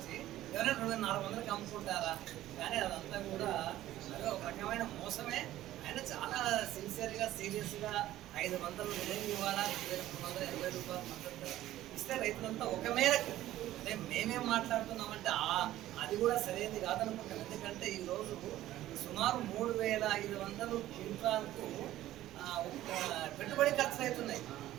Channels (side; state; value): left; quieter; 14.3 dB